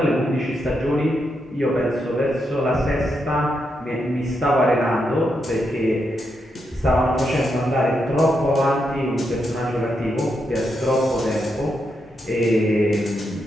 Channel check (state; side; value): normal; both; correlation 0.83